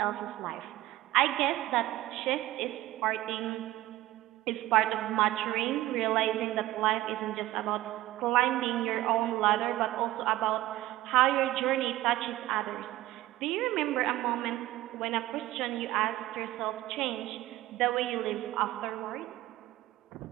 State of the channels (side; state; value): left; quieter; 16.1 dB